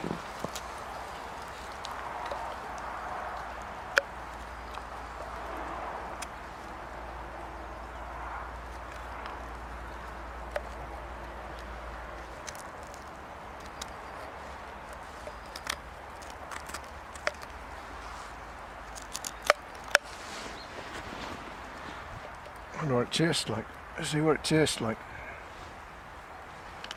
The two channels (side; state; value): both; identical; correlation 1.00